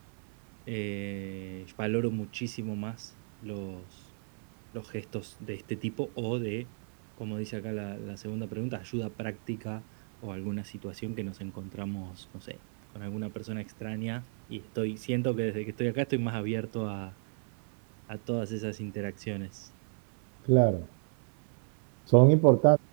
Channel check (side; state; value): left; silent; 56 dB below the other